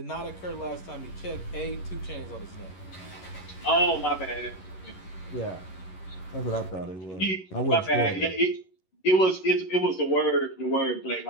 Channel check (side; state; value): right; late; 11 ms